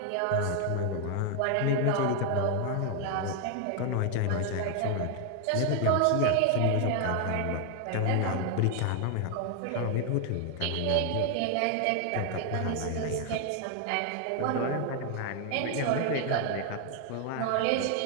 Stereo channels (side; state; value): both; different; correlation 0.00